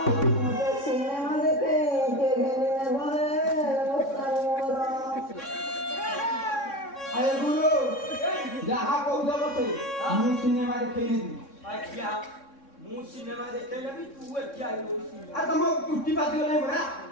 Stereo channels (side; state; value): right; late; 3.6 ms